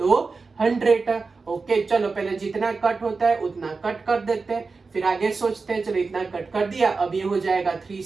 100, ओके। चलो पहले जितना कट होता है उतना कट कर देते हैं, फिर आगे सोचते हैं। चलो इतना कट कर दिया, अब ये हो जाएगा 3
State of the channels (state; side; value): quieter; left; 4.3 dB